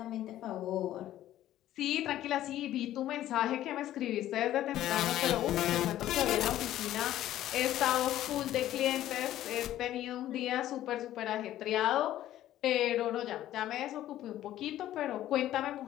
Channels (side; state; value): right; quieter; 13.2 dB